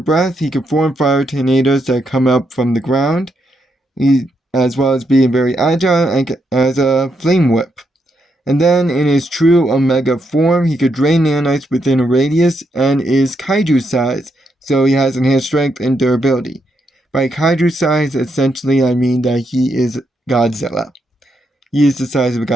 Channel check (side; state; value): both; normal; correlation 0.80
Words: He can form fire tornadoes that come up from the ground, as well as being very agile and as a flame whip. And then in his true Omega form, he could drain nanites within a radius and is kaiju size, so he has enhanced strength and durability. By kaiju size, essentially I mean that he is Godzilla. He is the size of